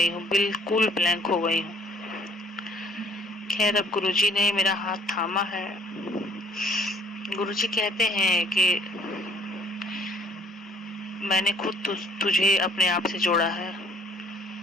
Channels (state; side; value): normal; both; correlation 0.57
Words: हूँ, बिल्कुल ब्लैंक हो गई हूँ। खैर अब गुरुजी ने मेरा हाथ थामा है। गुरुजी कहते हैं कि मैंने खुद तुझे अपने आप से जोड़ा है।